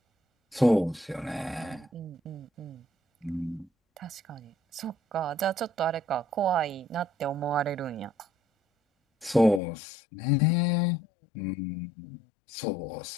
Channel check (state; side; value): drops out; right; at 9.6 s